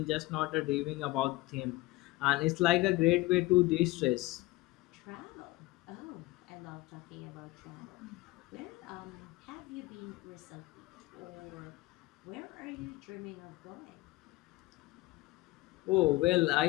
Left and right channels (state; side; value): quieter; right; 20.0 dB